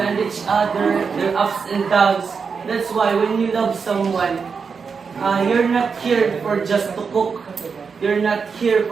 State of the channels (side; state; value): left; quieter; 5.6 dB